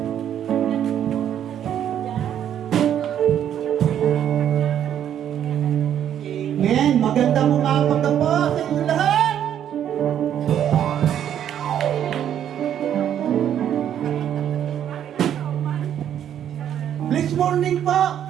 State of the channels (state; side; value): quieter; left; 10.0 dB